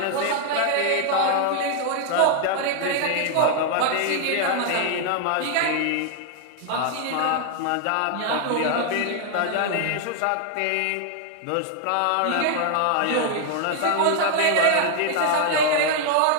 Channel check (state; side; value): different; both; correlation 0.00